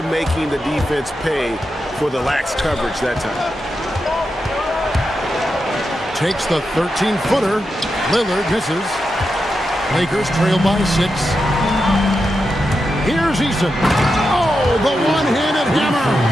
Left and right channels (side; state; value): both; normal; correlation 0.88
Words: making the defense pay for the lax coverage that time. Takes the 13-footer. Lillard misses. Lakers trail by 6. Here's Eason. Oh, the one-handed hammer.